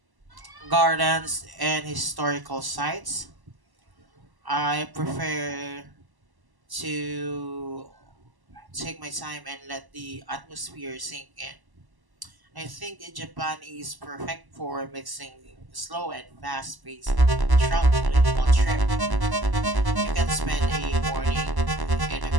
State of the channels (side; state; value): left; late; 1.1 ms